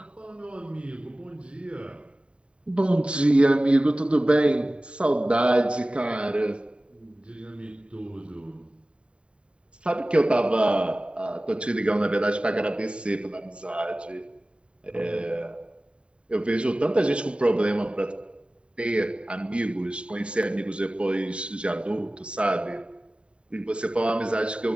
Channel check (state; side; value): late; left; 0.056 ms